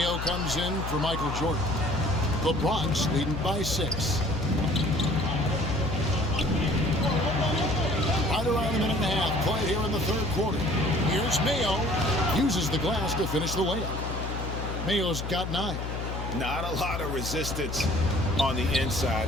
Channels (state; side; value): noise; left; hum, 5 dB below the sound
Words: comes in for Michael Jordan. The Bronx leading by 6. Right around a minute and a half played here in the third quarter. Here's Mayo. Uses the glass to finish the layup. Mayo's got 9. Not a lot of resistance on the inside,